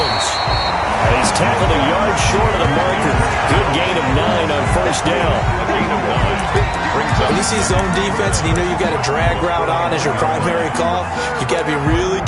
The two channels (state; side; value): identical; both; correlation 1.00